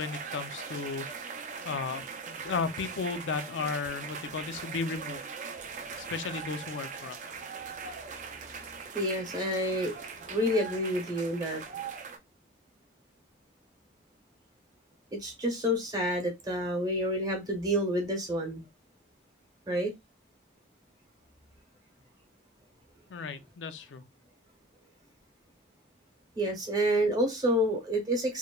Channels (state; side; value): normal; both; correlation 0.28